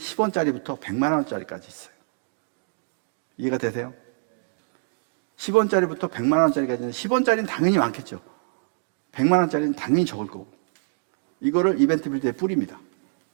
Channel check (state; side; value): silent; left; digital silence